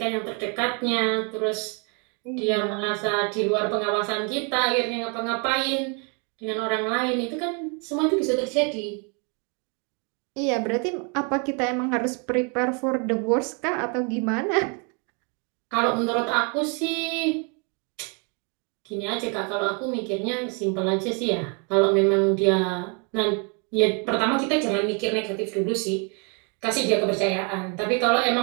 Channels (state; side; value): quieter; left; 35.5 dB